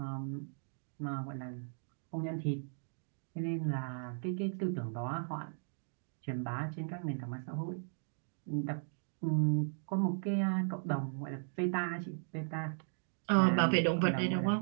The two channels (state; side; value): silent; left; digital silence